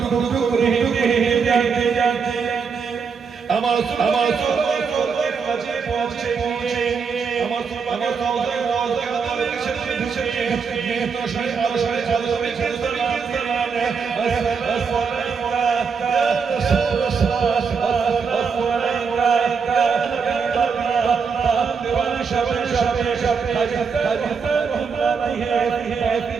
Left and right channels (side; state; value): left; quieter; 5.7 dB